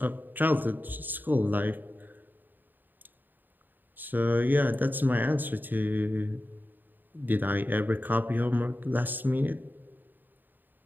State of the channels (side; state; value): left; late; 0.090 ms